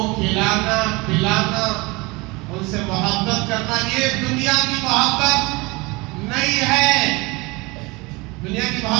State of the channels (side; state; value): left; quieter; 24.9 dB